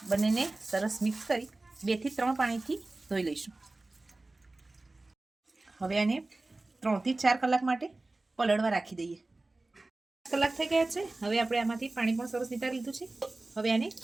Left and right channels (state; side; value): quieter; left; 3.0 dB